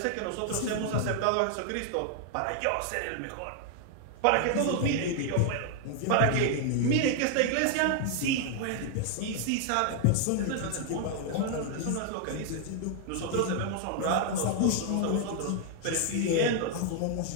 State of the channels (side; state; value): both; different; correlation 0.00